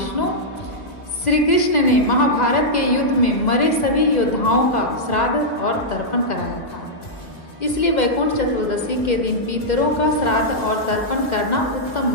श्री कृष्ण ने महाभारत के युद्ध में मरे सभी योद्धाओं का श्राद्ध और तर्पण कराया था। इसलिए वैकुंठ चतुर्दशी के दिन पितरों का श्राद्ध और तर्पण करना उत्तम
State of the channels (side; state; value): right; late; 2.1 ms